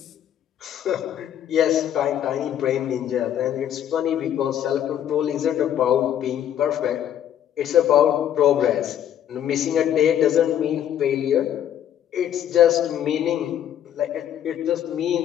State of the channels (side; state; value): right; quieter; 10.3 dB